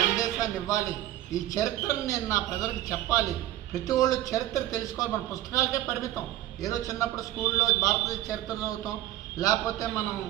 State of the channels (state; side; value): quieter; left; 14.2 dB